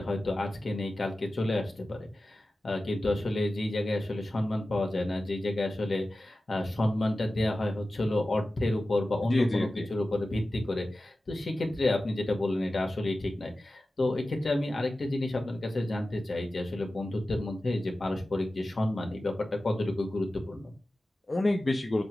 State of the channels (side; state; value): both; normal; correlation 0.95